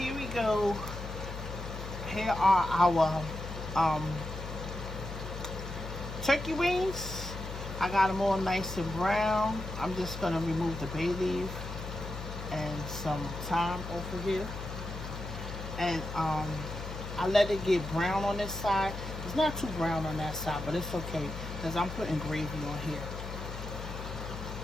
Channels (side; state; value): left; noise; hum, 8 dB below the sound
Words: we go. Here are our turkey wings. I got them all nice and brown. I'm just gonna remove the bay leaf and some thyme off of here. And I let it get brown on this side. It's not too brown on that side, but it's okay because I'm putting gravy on here.